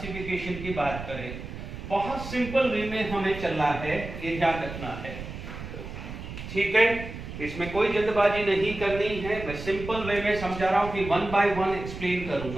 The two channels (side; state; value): right; noise; rumble, 10 dB below the sound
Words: की बात करें, बहुत सिंपल वे में हमें चलना है, ये ध्यान रखना है, ठीक है। इसमें कोई जल्दबाजी नहीं करनी है, मैं सिंपल वे में समझा रहा हूं कि वन बाय वन एक्सप्लेन